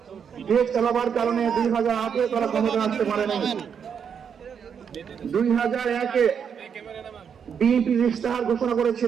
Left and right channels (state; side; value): quieter; left; 7.3 dB